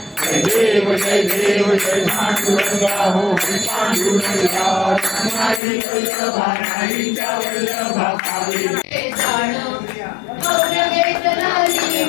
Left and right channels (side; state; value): right; drops out; at 5.6 s